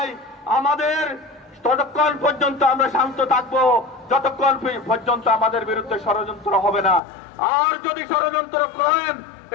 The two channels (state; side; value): drops out; right; at 7.0 s